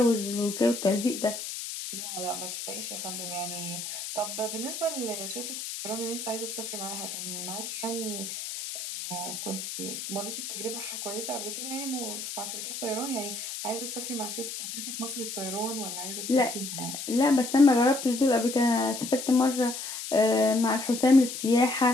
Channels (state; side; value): noise; left; hiss, 7 dB below the sound